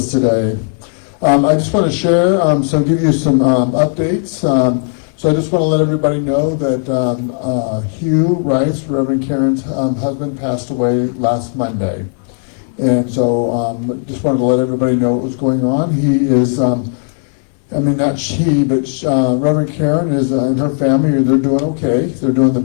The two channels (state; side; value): silent; right; 60 dB below the other